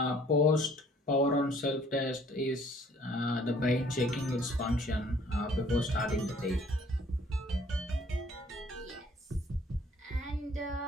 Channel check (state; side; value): normal; both; correlation 0.58